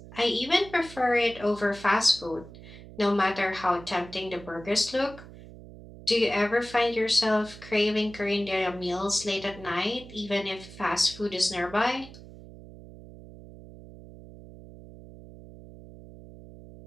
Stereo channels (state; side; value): noise; right; hum, 17 dB below the sound